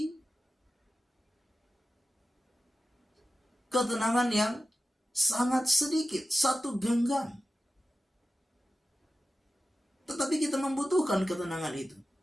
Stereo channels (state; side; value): normal; both; correlation 0.94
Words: ketenangan yang sangat sedikit, 1 genggam. Tetapi kita membutuhkan ketenangan itu.